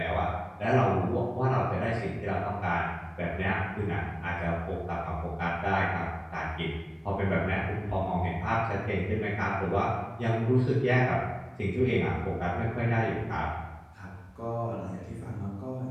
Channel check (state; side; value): identical; both; correlation 1.00